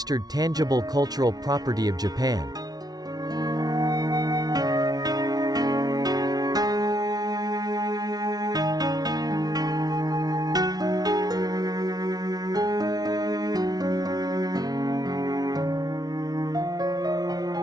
tangible cultural property of Japan.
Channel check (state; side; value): late; left; 0.19 ms